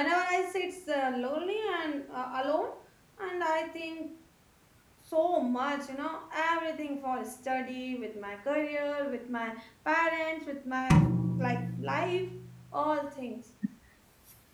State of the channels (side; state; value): both; identical; correlation 1.00